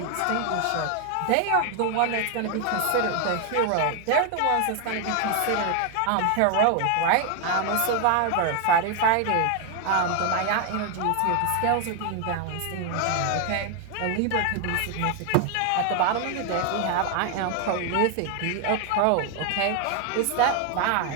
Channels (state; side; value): different; both; correlation 0.01